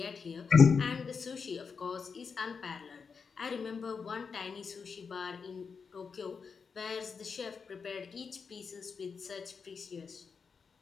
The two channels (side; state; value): right; quieter; 5.6 dB